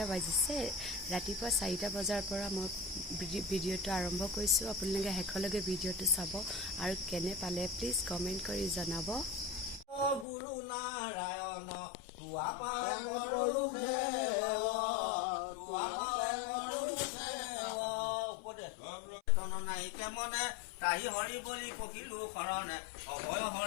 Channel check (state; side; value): drops out; right; at 10.2 s